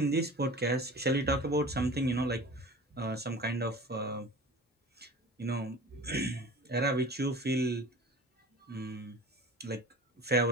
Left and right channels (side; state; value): both; normal; correlation 0.39